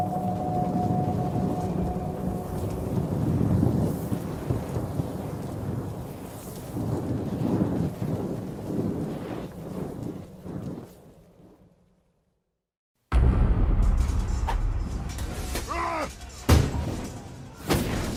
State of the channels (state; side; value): identical; both; correlation 1.00